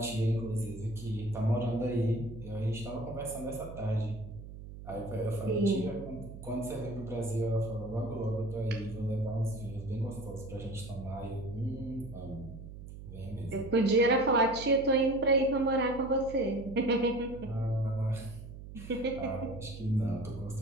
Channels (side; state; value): right; noise; hum, 13 dB below the sound